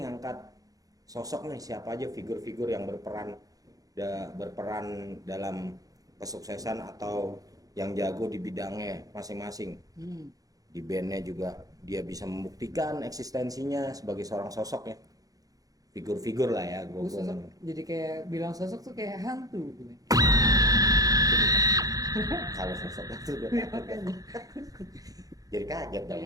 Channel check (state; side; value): late; left; 0.17 ms